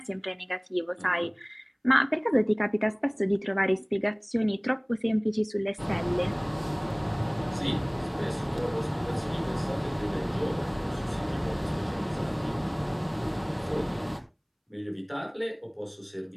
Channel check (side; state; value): both; identical; correlation 1.00